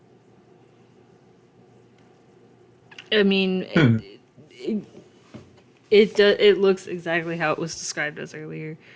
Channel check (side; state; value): both; identical; correlation 1.00